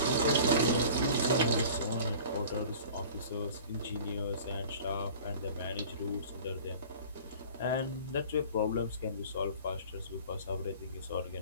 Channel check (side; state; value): both; inverted; correlation -0.43